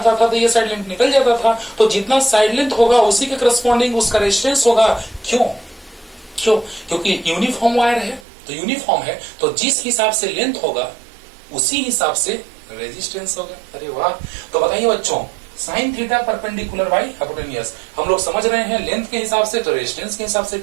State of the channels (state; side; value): drops out; left; at 8.2 s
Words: था तो ये साइड लेंथ निकल जाता था, तो जितना साइड लेंथ होगा उसी के करस्पॉन्डिंग उसका रेजिस्टेंस होगा। क्यों? क्योंकि यूनिफॉर्म वायर है, तो यूनिफॉर्म है तो जिस हिसाब से लेंथ होगा उसी हिसाब से रेजिस्टेंस होगा। अरे वाह! तो बताइए बच्चों, sign theta perpendicular by hypotenuse हम लोग समझ रहे हैं लेंथ के हिसाब से तो रेजिस्टेंस के हिसाब से,